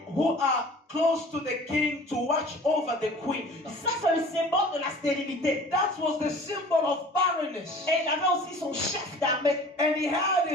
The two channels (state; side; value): normal; both; correlation 0.45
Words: who are close to the king to watch over the queen. Ça, c'est le symbole de la stérilité. That was the symbol of barrenness. Et il avait aussi son chef d'armée. And he had